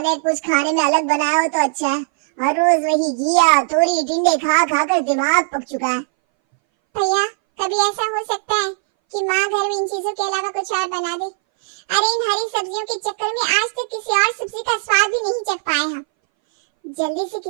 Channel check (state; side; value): silent; left; 62 dB below the other